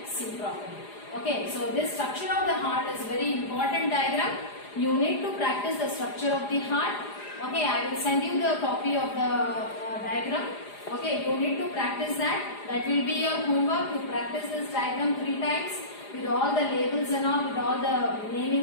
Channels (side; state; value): right; late; 4.9 ms